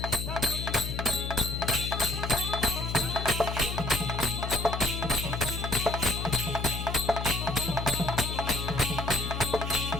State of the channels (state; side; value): noise; left; hum, 4 dB below the sound